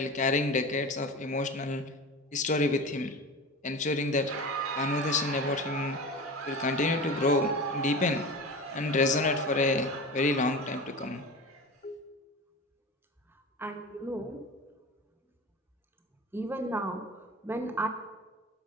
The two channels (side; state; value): both; normal; correlation 0.31